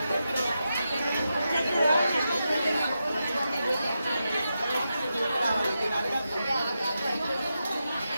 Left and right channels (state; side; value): inverted; both; correlation -0.88